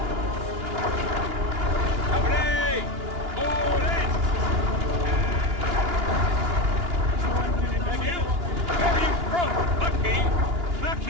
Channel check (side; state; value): left; late; 2.9 ms